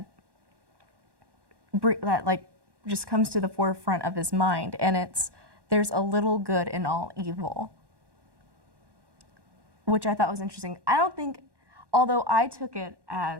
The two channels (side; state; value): left; late; 1.1 ms